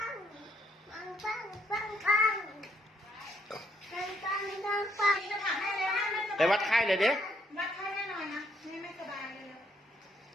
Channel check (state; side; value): normal; both; correlation 0.71